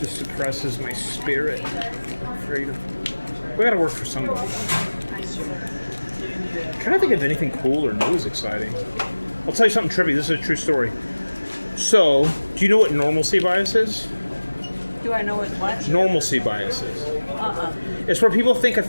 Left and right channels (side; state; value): both; inverted; correlation -1.00